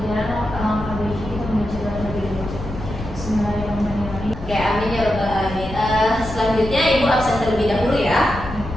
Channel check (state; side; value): noise; left; rumble, 10 dB below the sound